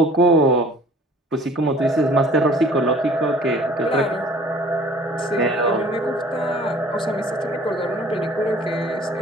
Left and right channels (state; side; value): normal; both; correlation 0.50